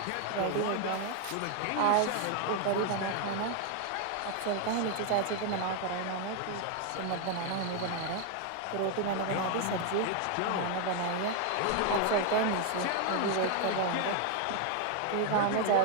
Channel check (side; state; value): both; different; correlation 0.00